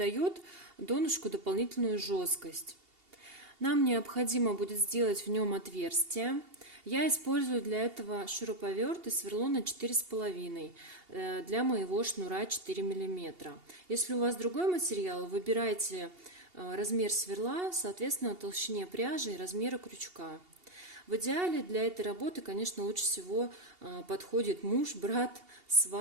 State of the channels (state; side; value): late; left; 2.8 ms